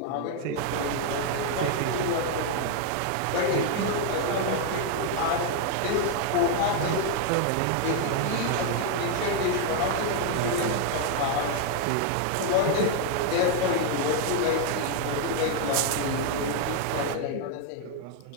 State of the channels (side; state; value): both; different; correlation 0.00